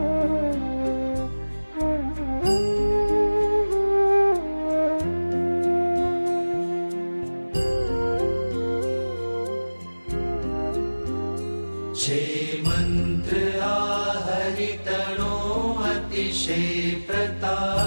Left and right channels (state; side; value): inverted; both; correlation -1.00